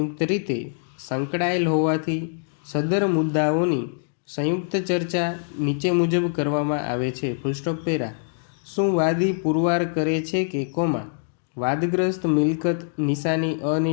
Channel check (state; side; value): silent; right; digital silence